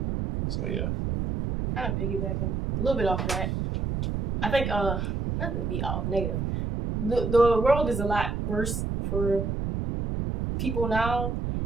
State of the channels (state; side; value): noise; right; rumble, 1 dB below the sound